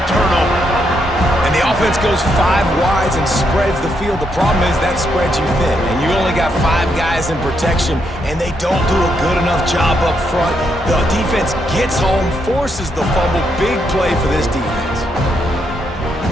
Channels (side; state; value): both; normal; correlation 0.78